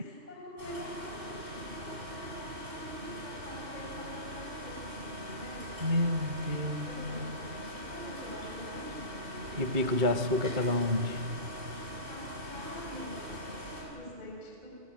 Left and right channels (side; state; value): left; late; 2.6 ms